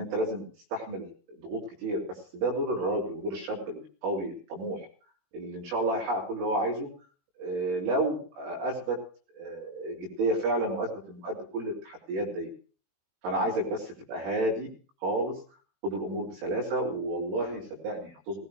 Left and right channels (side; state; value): left; late; 18 ms